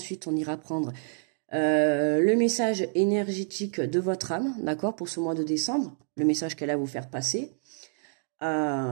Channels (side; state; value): left; silent; digital silence